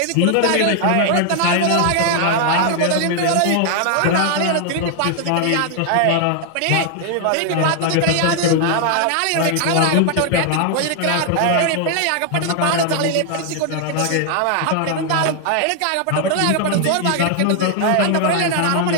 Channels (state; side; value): different; both; correlation 0.00